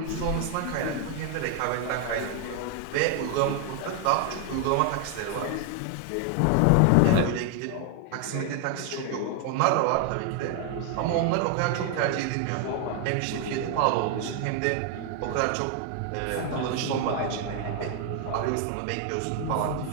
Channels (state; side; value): different; both; correlation 0.00